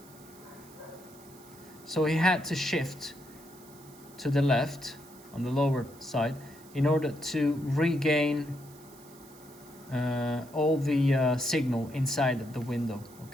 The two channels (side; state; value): right; noise; hiss, 23 dB below the sound